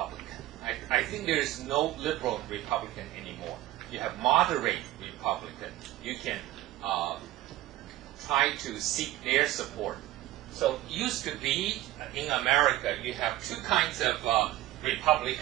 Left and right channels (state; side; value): quieter; left; 15.4 dB